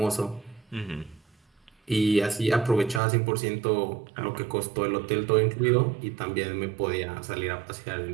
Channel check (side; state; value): left; drops out; at 3.0 s